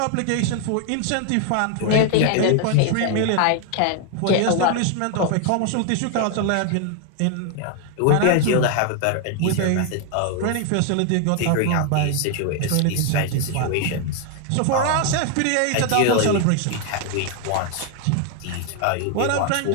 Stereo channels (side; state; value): both; different; correlation 0.00